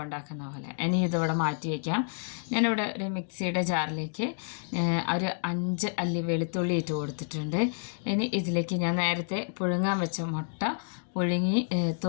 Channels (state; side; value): silent; right; digital silence